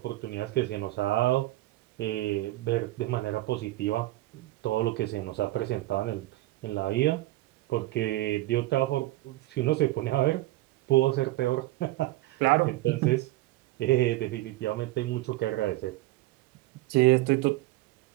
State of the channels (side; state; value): left; quieter; 17.7 dB